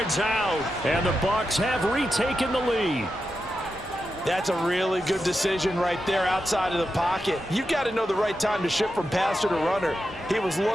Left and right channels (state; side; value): normal; both; correlation 0.88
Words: out, and the Bucs have retaken the lead. That's a really good decision right there outside of the pocket. You've got to know the right time to shift from passer to runner. He was